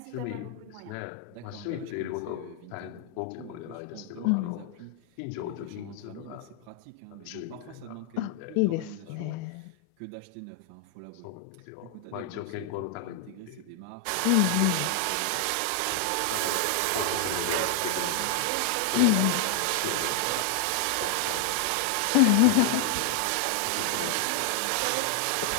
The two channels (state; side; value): different; both; correlation 0.00